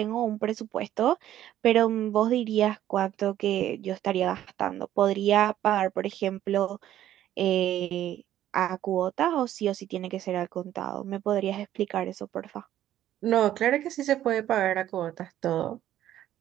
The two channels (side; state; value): left; quieter; 12.3 dB